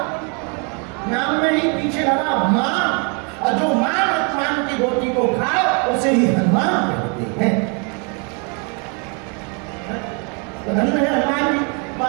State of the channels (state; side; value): quieter; left; 35.6 dB